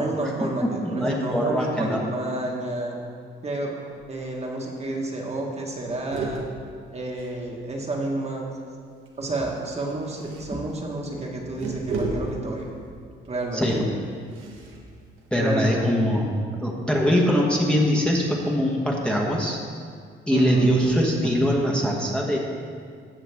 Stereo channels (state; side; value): normal; both; correlation 0.71